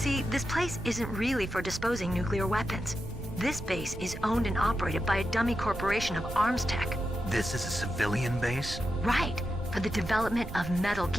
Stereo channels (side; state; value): right; noise; rumble, 10 dB below the sound